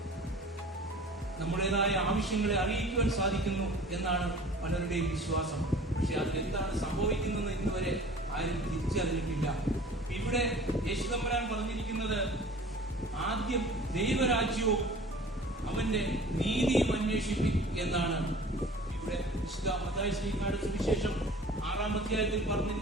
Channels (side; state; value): both; normal; correlation 0.45